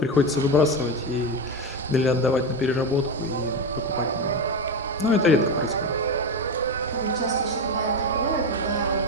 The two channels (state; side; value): normal; both; correlation 0.15